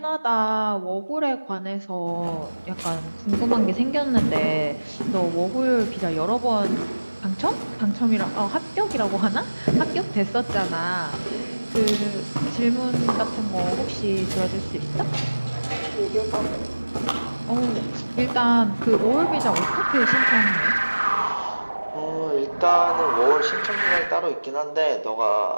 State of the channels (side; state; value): both; inverted; correlation -1.00